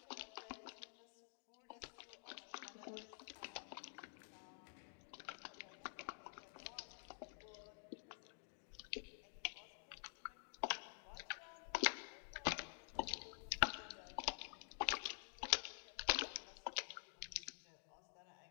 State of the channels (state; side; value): silent; right; digital silence